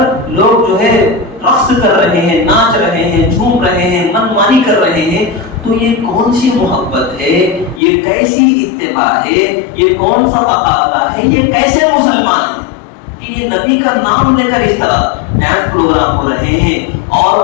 لوگ جو ہے رقص کر رہے ہیں، ناچ رہے ہیں، جھوم رہے ہیں، من مانی کر رہے ہیں. تو یہ کون سی محبت ہے؟ یہ کیسی اتباع ہے؟ یہ کون سا تقاضا ہے؟ یہ کیسے مسلمان ہیں کہ یہ نبی کا نام لے کر اس طرح ڈانس پروگرام ہو رہے ہیں؟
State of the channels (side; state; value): right; drops out; at 7.8 s